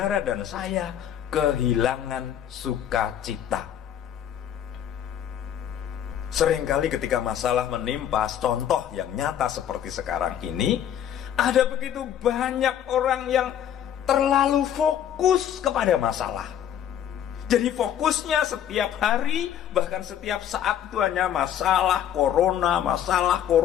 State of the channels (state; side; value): quieter; right; 10.0 dB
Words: dan saya kehilangan sukacita. Seringkali ketika masalah menimpa, contoh yang nyata seperti sekarang ini, ada begitu banyak orang yang terlalu fokus kepada masalah. Jadi fokusnya setiap hari, bahkan setiap saat itu hanya masalah corona, masalah